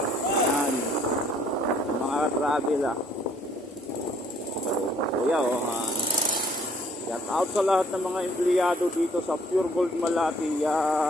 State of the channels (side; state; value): both; normal; correlation 0.61